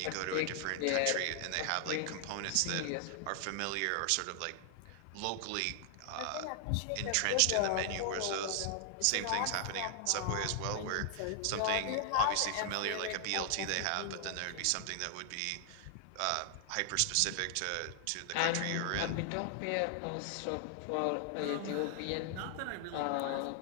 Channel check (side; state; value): both; different; correlation 0.00